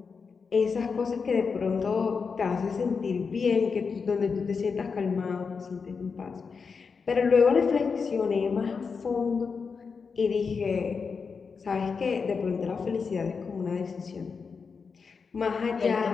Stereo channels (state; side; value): quieter; right; 5.3 dB